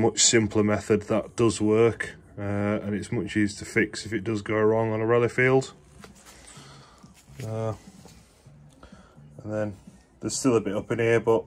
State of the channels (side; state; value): both; identical; correlation 1.00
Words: simpler method that does work, and it's much easier to fix if it does go wrong on a rally field. And then there's still a bit up in here, but